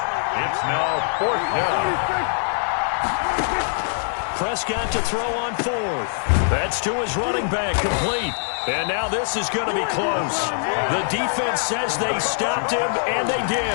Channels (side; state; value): right; silent; 61 dB below the other